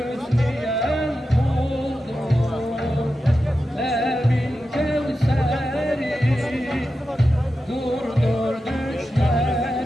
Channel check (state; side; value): normal; both; correlation 0.91